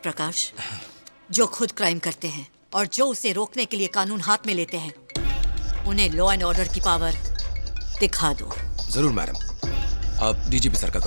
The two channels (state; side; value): inverted; both; correlation -1.00